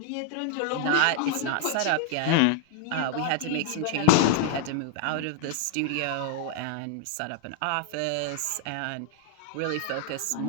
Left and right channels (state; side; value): different; both; correlation 0.00